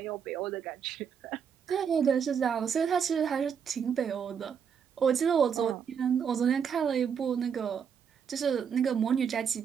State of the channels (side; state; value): left; quieter; 7.3 dB